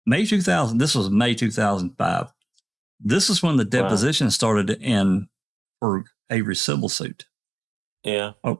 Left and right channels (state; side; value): drops out; left; at 5.3 s